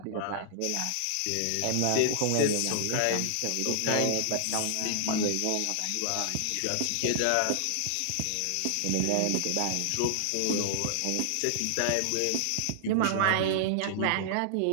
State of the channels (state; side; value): different; both; correlation -0.01